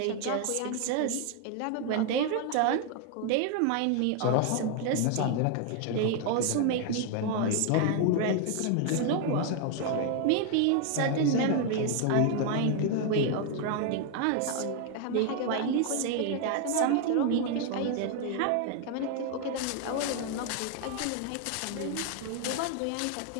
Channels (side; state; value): both; different; correlation 0.00